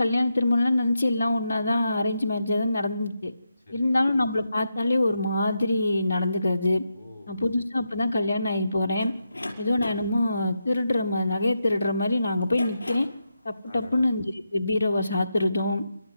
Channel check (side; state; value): both; inverted; correlation -0.85